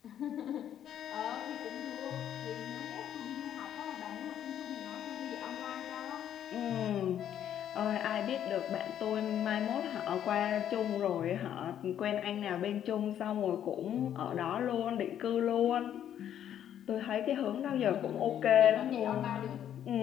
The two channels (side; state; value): right; quieter; 10.2 dB